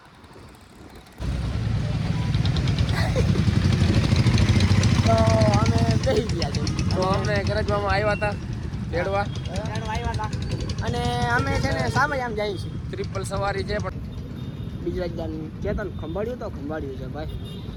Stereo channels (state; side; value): identical; both; correlation 1.00